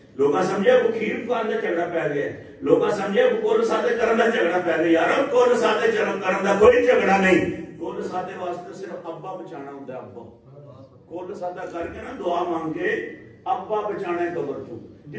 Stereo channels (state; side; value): identical; both; correlation 1.00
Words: لوگوں سمجھے وہ کھیر کو اندر جھگڑا پہ گیا ہے, لوگوں سمجھے وہ کول سادے کرن دا جھگڑا پہ گیا. یار کول سادے کرن دا کوئی جھگڑا نہیں. کول سادے واسطے صرف ابا بچانا ہوتا ہے. ابا کول سادہ کر کے نا دعا مانگ کے ابا بچانا ہے قبر تو,